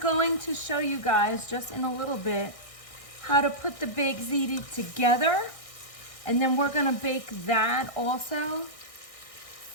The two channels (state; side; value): late; right; 1.6 ms